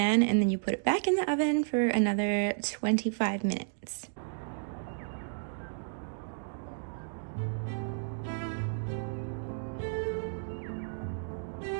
and then you put it back in the oven for another 25 minutes.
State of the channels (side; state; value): left; silent; digital silence